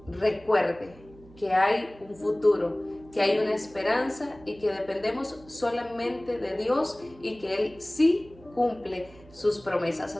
recuerde que hay un futuro, que hay una esperanza y que dependemos solamente de Dios y que Él sí cumple sus promesas.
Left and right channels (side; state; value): right; noise; hum, 23 dB below the sound